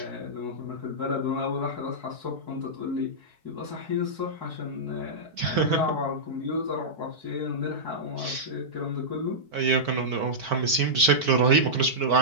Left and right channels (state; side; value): late; left; 4.6 ms